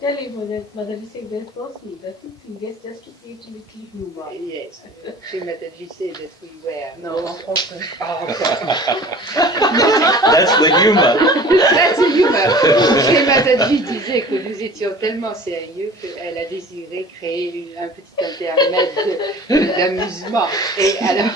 him mother is saying there's no sleep. Nothing serious, just to see it a little humor. Yes, she made you say that we were. Non, en français. That's the humor. That's the humor. Chez Mataji disait que nous étions tellement sérieux qu'elle a désiré créer un petit intermède d'amusement. Et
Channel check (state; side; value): normal; both; correlation 0.44